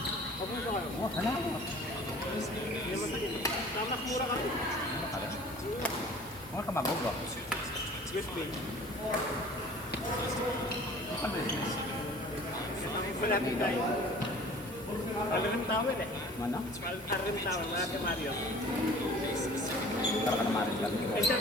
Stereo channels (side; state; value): both; normal; correlation 0.47